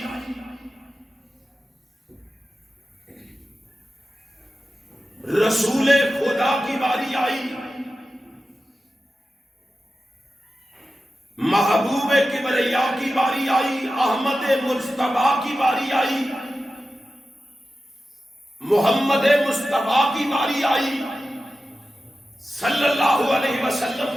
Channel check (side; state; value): both; normal; correlation 0.93